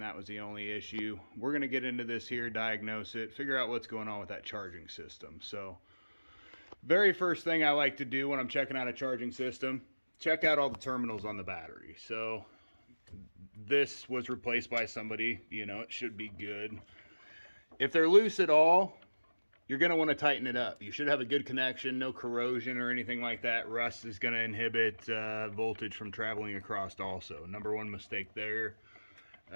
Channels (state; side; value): inverted; both; correlation -1.00